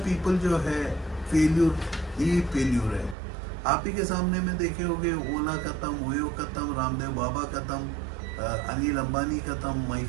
पीपल जो है फेल्यूर है। आप ही के सामने में देखे होंगे, ओला खत्म, ओयो खत्म, रामदेव बाबा खत्म, अनिल अंबानी खत्म,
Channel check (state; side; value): drops out; left; at 3.2 s